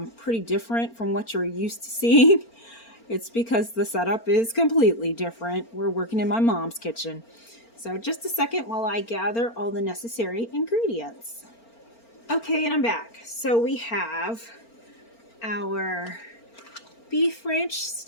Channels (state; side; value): late; right; 4.4 ms